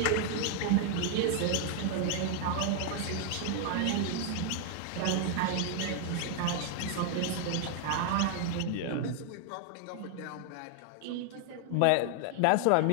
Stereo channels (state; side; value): different; both; correlation 0.00